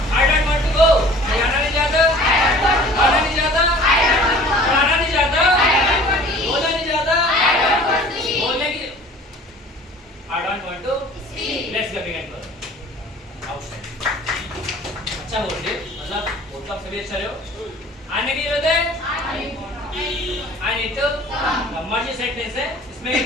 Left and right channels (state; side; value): normal; both; correlation 0.47